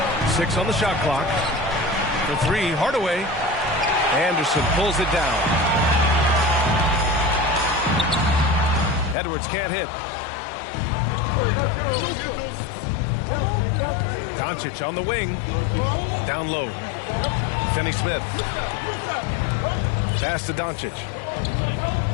6 on the shot clock. For 3, Hardaway. Anderson pulls it down. Edwards can't hit. Doncic on the wing. Down low. Finney-Smith. Pass to Doncic.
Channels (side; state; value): right; drops out; at 9.2 s